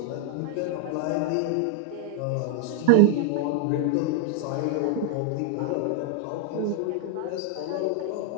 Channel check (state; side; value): different; both; correlation 0.00